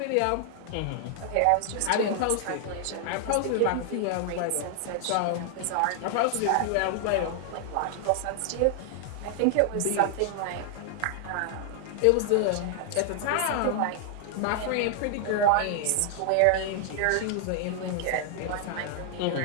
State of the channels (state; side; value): different; both; correlation 0.00